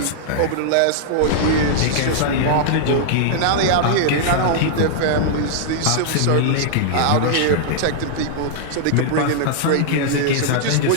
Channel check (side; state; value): both; different; correlation -0.01